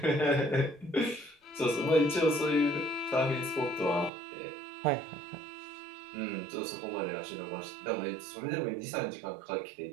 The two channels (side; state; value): left; drops out; at 4.1 s